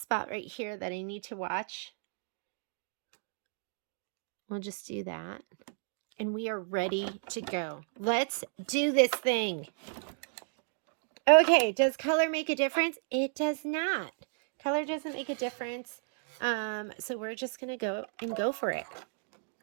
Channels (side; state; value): left; silent; digital silence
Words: right here that I need to watch. We'll just do that. And we are ready to go. Let's do this thing. Okay, does color make a difference? It does not. Color doesn't make a difference. So we're just going to go for it.